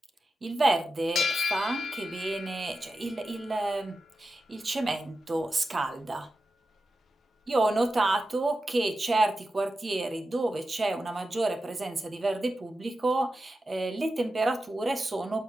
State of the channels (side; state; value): both; normal; correlation 0.91